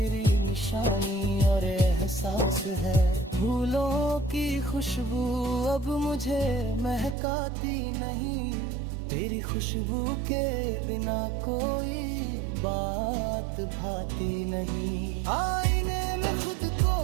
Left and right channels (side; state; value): left; drops out; at 7.2 s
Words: निशानी और एहसास है। फूलों की खुशबू अब मुझे महकाती नहीं, तेरी खुशबू के बिना कोई बात भाती नहीं। आईने में खुद को